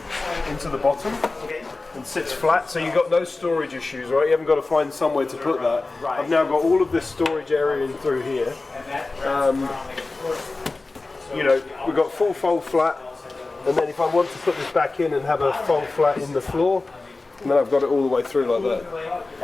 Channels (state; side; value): quieter; right; 3.4 dB